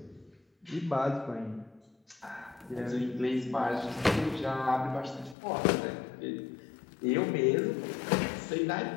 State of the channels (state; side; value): drops out; right; at 5.4 s